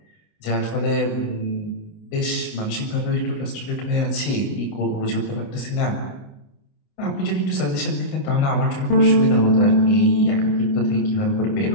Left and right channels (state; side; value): late; right; 28 ms